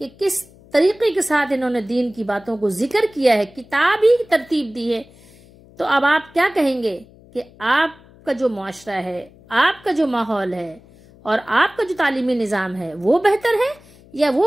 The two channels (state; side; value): noise; left; hum, 25 dB below the sound